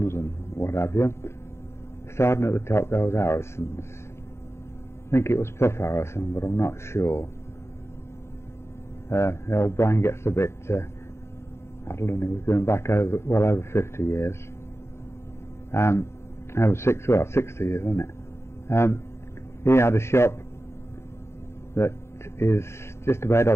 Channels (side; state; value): right; late; 0.13 ms